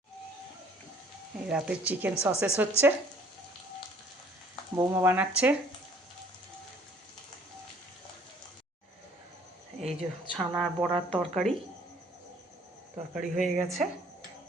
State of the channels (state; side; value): normal; both; correlation 0.57